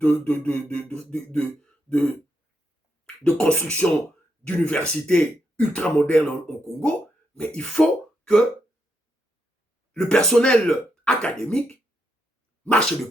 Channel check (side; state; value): both; normal; correlation 0.81